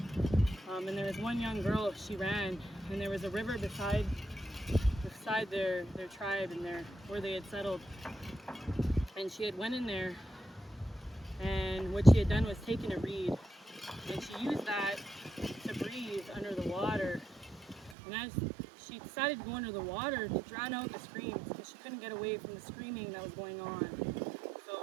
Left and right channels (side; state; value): left; drops out; at 17.9 s